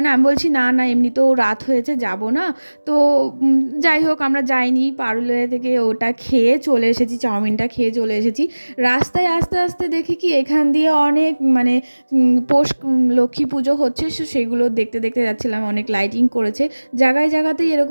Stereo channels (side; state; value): both; inverted; correlation -1.00